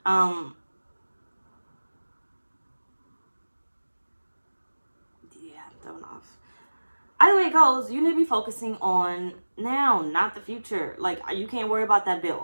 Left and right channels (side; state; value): both; inverted; correlation -1.00